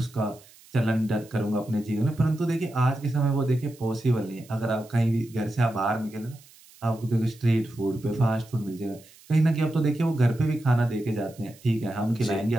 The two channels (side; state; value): right; noise; hiss, 25 dB below the sound